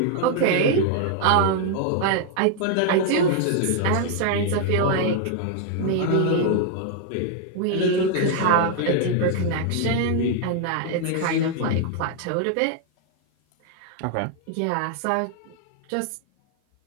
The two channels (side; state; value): both; different; correlation 0.00